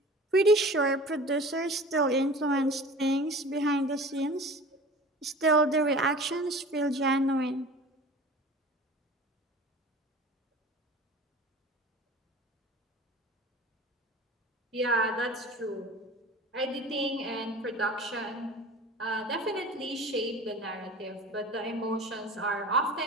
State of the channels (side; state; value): both; normal; correlation 0.40